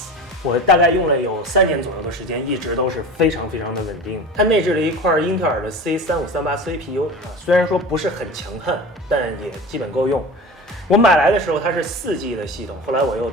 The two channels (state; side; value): normal; both; correlation 0.33